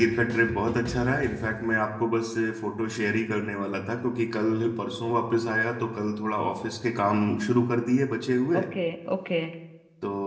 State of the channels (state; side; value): identical; both; correlation 1.00